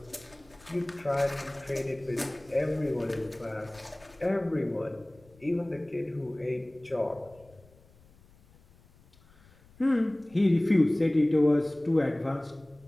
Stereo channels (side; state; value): left; noise; rumble, 28 dB below the sound